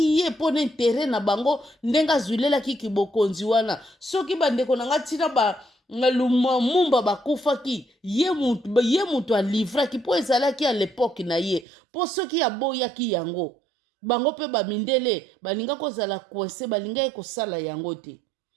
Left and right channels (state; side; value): drops out; left; at 11.7 s